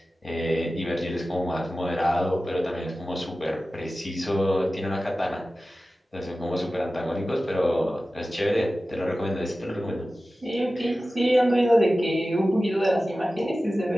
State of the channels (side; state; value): both; normal; correlation 0.95